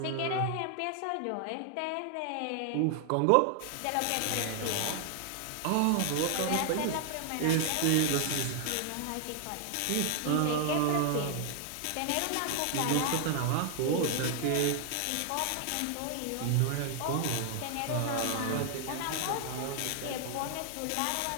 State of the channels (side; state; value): both; different; correlation 0.00